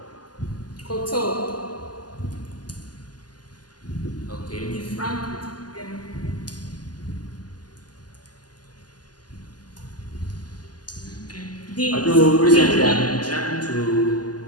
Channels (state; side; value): late; right; 0.70 ms